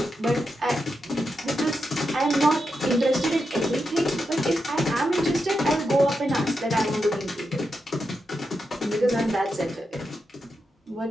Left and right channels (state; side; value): normal; both; correlation 0.86